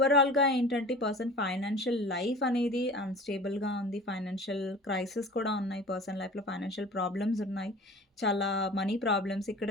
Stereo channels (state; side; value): normal; both; correlation 0.41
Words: ఏంటంటే ఈ పర్సన్ ఫైనాన్షియల్ లైఫ్ అనేది అన్‌స్టేబుల్‌గా ఉంది. ఫైనాన్షియల్ క్రైసిస్ కూడా ఉన్నాయి. పర్సన్ లైఫ్‌లో ఫైనాన్షియల్ ప్రాబ్లమ్స్ ఉన్నాయి. చాలా మనీ ప్రాబ్లమ్స్. ఇక్కడ